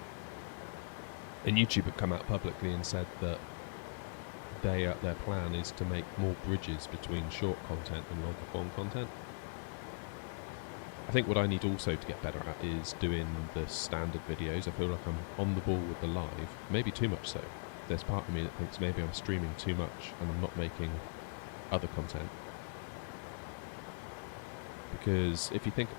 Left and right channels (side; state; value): right; silent; digital silence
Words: And YouTube had come out publicly and said that their plan is to make more bridges between short content and longer form content. I think what I need also to get better at is doing the standard videos. I feel like I'm on the ball with the live, maybe too much so. There's part of me that thinks maybe I'm streaming too much and I'm not making other content. Because if you think